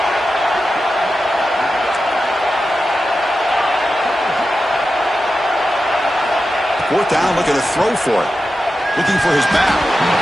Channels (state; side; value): normal; both; correlation 0.91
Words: Fourth down, looking to throw for it. Looking for his back.